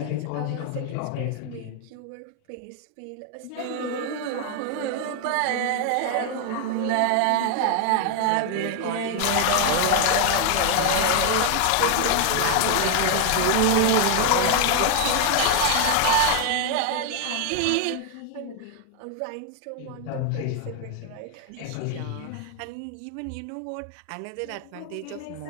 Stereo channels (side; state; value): both; different; correlation 0.00